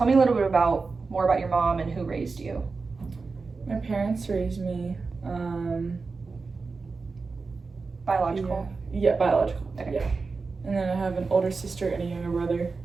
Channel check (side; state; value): left; quieter; 4.3 dB